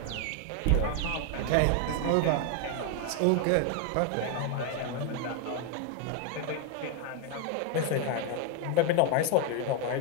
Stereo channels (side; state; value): both; different; correlation 0.01